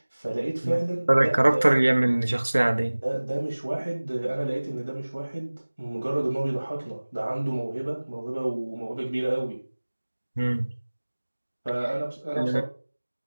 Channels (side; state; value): both; inverted; correlation -1.00